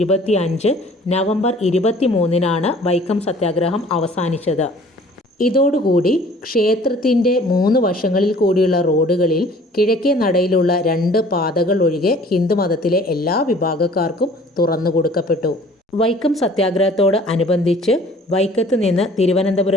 നവംബർ 23-നാണ് വൈക്കം സത്യാഗ്രഹം അവസാനിച്ചത്. ഇതോടുകൂടി ക്ഷേത്രത്തിൻ്റെ 3 വശങ്ങളിൽ കൂടിയുള്ള റോഡുകളിൽ കിഴക്കേ നടയിലുള്ള 2 പാതകൾ ഒഴികെ ഹിന്ദുമതത്തിലെ എല്ലാ വിഭാഗക്കാർക്കും തുറന്നു കൊടുക്കപ്പെട്ടു. വൈക്കം സത്യാഗ്രഹത്തോട് അനുബന്ധിച്ച് വൈക്കത്ത് നിന്ന്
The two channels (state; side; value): normal; both; correlation 0.51